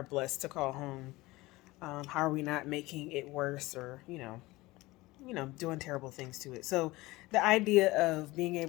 blessed to call home? How are we not making it worse or, doing terrible things to it? So the idea of being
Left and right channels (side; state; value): right; quieter; 20.3 dB